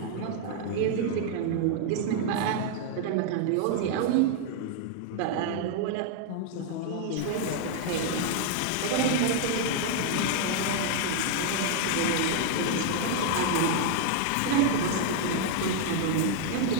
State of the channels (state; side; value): different; both; correlation 0.00